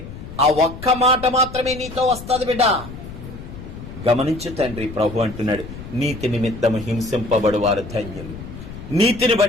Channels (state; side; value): noise; left; rumble, 12 dB below the sound